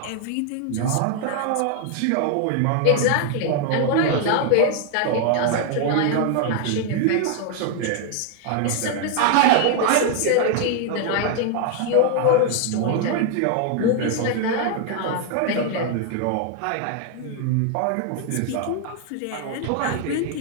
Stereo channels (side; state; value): both; different; correlation 0.00